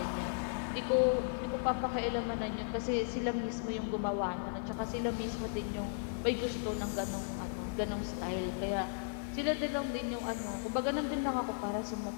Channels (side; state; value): right; silent; digital silence